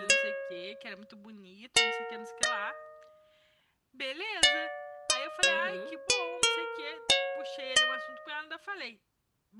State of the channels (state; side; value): identical; both; correlation 1.00